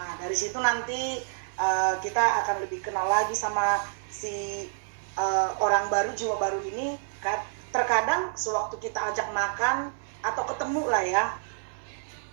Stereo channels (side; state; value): left; silent; digital silence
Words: dari situ nanti kita akan lebih kenal lagi sama si orang baru, jiwa baru ini. Terkadang sewaktu kita ajak makan atau ketemu lah ya,